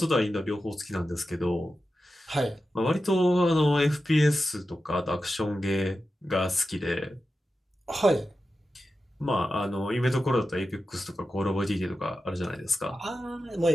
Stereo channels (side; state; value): both; normal; correlation 0.91